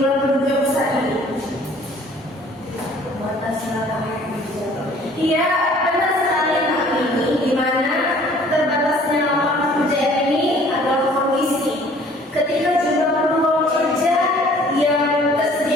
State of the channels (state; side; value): normal; both; correlation 0.54